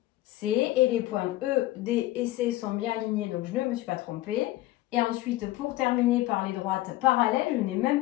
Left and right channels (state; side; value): quieter; right; 16.7 dB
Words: et les points ED et C sont bien alignés, donc je ne me suis pas trompée. Et ensuite, pour terminer par les droites parallèles, je n'ai même